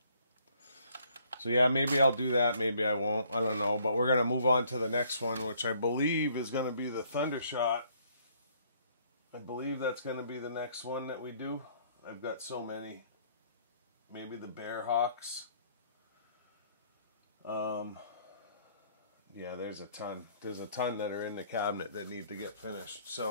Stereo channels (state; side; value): inverted; both; correlation -0.64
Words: So yeah, maybe I'll do that, maybe I won't, I don't know. But we're going to move on to the next one, which I believe is going to be the Thundershot. I believe that's going to be the next one that we do. I've got so many. Maybe the Bearhawks. Yeah, there's a ton. There's a ton that are in the cabinet that need to get finished.